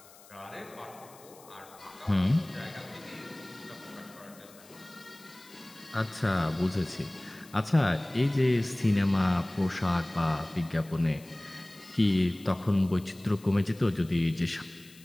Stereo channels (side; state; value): left; noise; hiss, 23 dB below the sound